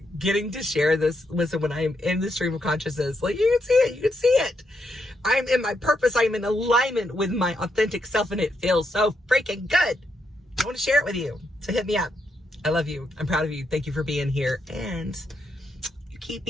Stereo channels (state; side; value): normal; both; correlation 0.80